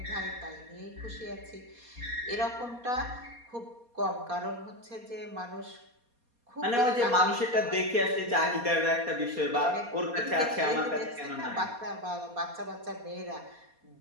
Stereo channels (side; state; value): left; late; 4.2 ms